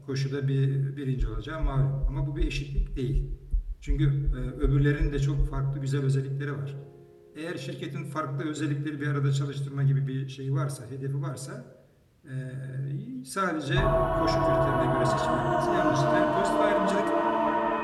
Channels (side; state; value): both; identical; correlation 1.00